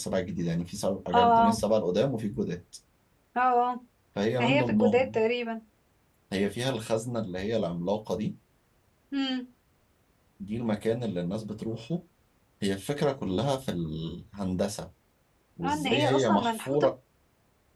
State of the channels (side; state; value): both; identical; correlation 1.00